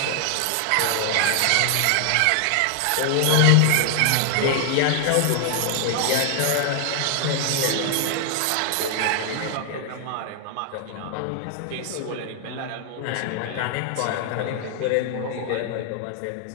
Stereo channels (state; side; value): different; both; correlation 0.00